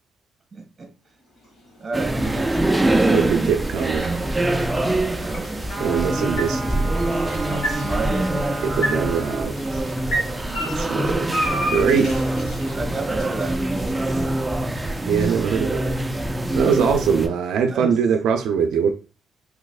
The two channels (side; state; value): left; quieter; 3.2 dB